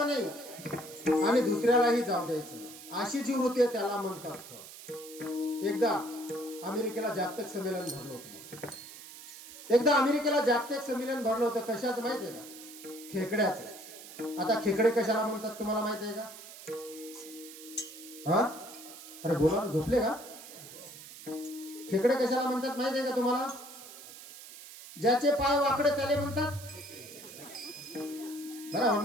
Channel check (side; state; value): right; noise; hiss, 15 dB below the sound